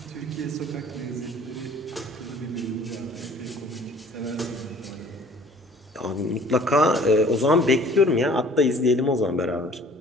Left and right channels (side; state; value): both; normal; correlation 0.52